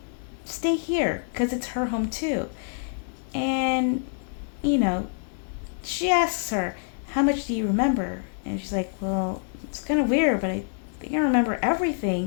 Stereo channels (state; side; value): silent; right; 61 dB below the other